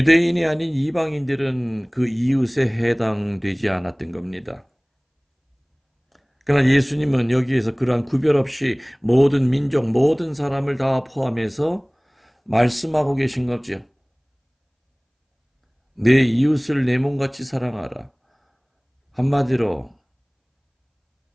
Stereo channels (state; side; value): identical; both; correlation 1.00